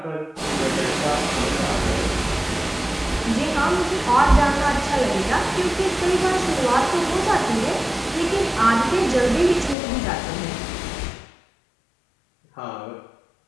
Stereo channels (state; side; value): drops out; right; at 9.8 s